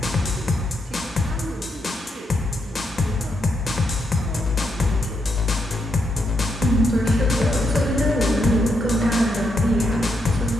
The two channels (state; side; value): normal; both; correlation 0.80